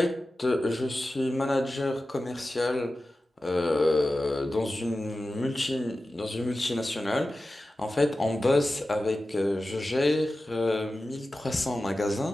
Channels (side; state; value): both; normal; correlation 0.94